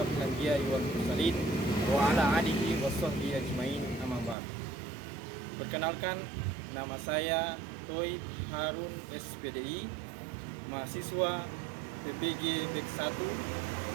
anbiya'i wal mursalin wa ala alihi washabbihi ajmain, amma ba'd. Perkenalkan, nama saya Toib Harun SPDI, mahasiswa PPG BEK 1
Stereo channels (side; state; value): left; drops out; at 4.4 s